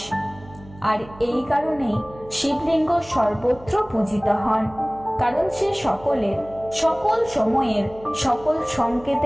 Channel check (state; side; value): noise; right; hum, 21 dB below the sound